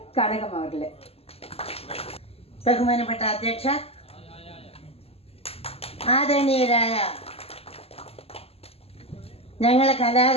கனகம் அவர்களே. ബഹുമാനപ്പെട്ട അധ്യക്ഷ, ആദരണീയരായ ഞങ്ങളെ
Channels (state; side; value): late; right; 0.29 ms